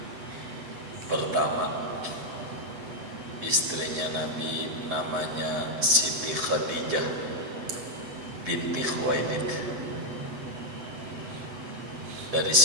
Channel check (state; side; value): late; left; 7.9 ms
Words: Pertama, istrinya Nabi namanya Siti Khadijah binti Khuwailid. Dari